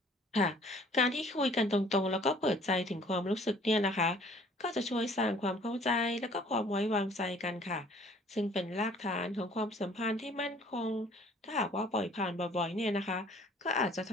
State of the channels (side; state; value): both; normal; correlation 0.55